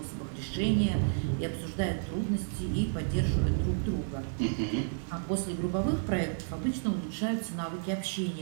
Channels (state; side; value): silent; left; 57 dB below the other